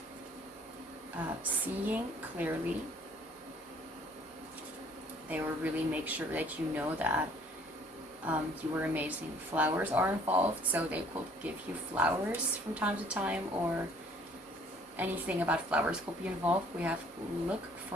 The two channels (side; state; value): both; normal; correlation 0.57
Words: Seeing clearly. They will really make sure that you know that you are amazing. Flowers are involved, so they could give you flowers from time to time, or anything about flowers could be involved. We have look